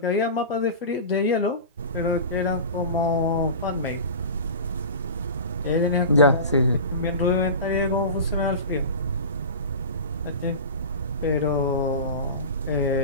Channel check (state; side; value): inverted; both; correlation -0.31